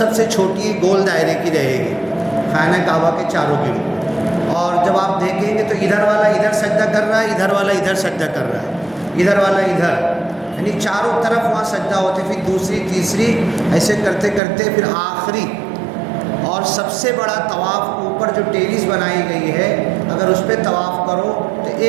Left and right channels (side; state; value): left; drops out; at 14.4 s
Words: سے چھوٹی گول دائرے کی رہے گی، خانہ کعبہ کے چاروں گرد۔ اور جب آپ دیکھیں گے تو ادھر والا ادھر سجدہ کر رہا ہے، ادھر والا ادھر سجدہ کر رہا ہے، ادھر والا ادھر، یعنی چاروں طرف وہاں سجدہ ہوتے، پھر دوسری تیسری ایسے کرتے کرتے پھر آخری اور سب سے بڑا طواف اوپر جو ٹیریس بنائی گئی ہے، اگر اس پہ طواف کرو تو